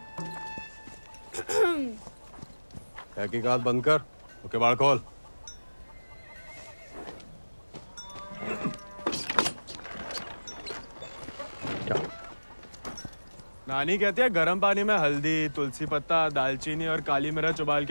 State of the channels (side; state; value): both; inverted; correlation -1.00